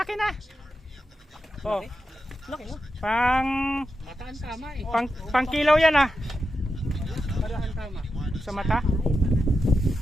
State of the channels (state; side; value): normal; both; correlation 0.89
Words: na. Oh, Laki no? pang Mataan tama eh. pang kilaw yan ah. Parahan tama. Sa mata.